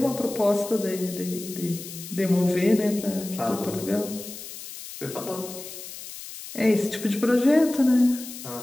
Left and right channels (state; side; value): noise; left; hiss, 12 dB below the sound